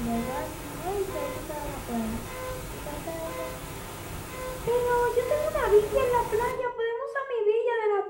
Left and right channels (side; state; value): both; identical; correlation 1.00